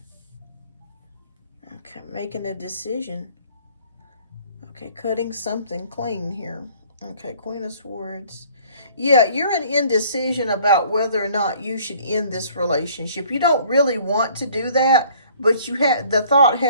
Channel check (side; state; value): both; inverted; correlation -0.56